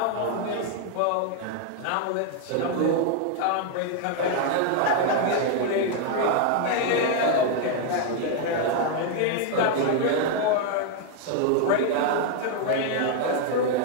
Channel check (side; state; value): both; different; correlation 0.00